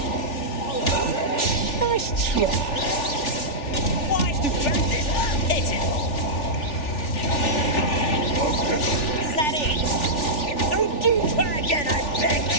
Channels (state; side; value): late; right; 3.4 ms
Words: Nice try. Wise to burn this. Hit it. Is that it? Don't do try again, I beg.